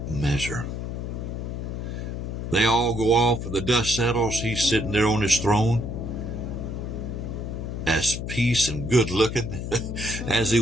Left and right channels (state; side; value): noise; left; hum, 5 dB below the sound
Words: measure. They all go off, and the dust settles. He's sitting there on his throne, as peace and good looking as he